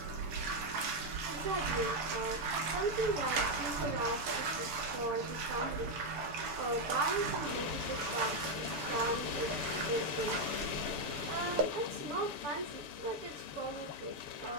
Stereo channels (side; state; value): left; late; 6.9 ms